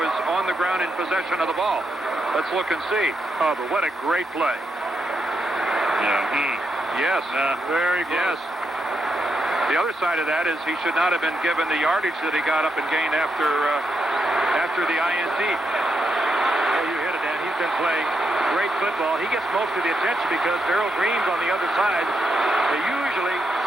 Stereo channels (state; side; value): normal; both; correlation 0.83